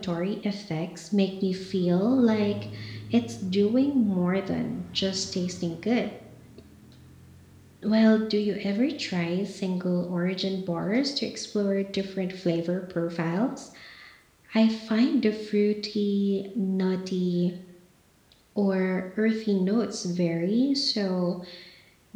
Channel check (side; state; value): both; identical; correlation 1.00